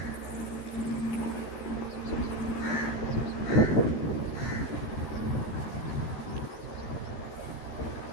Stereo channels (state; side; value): late; right; 13 ms